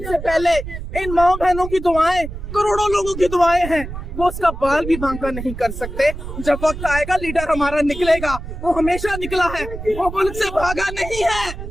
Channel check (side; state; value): right; noise; rumble, 9 dB below the sound